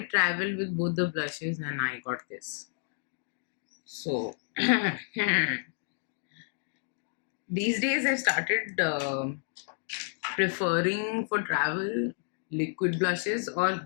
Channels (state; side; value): silent; right; digital silence